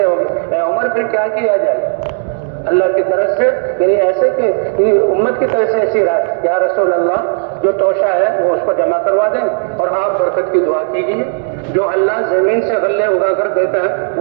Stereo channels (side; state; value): left; silent; digital silence